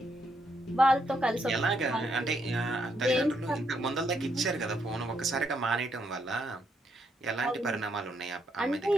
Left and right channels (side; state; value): both; normal; correlation 0.76